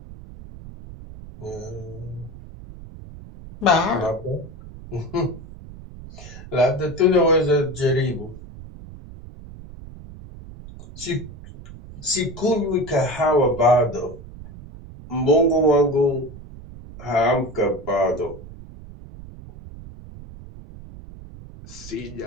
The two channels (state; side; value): noise; right; rumble, 16 dB below the sound